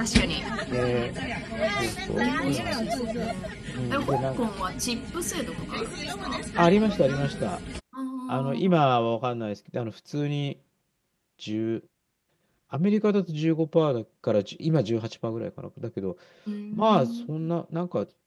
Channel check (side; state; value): both; identical; correlation 1.00